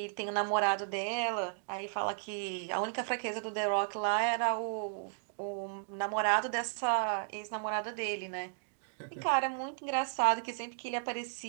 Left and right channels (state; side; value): silent; left; digital silence